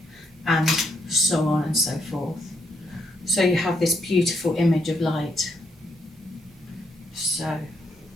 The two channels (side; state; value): both; normal; correlation 0.75